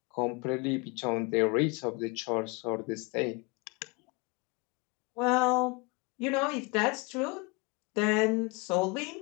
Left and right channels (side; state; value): right; quieter; 28.5 dB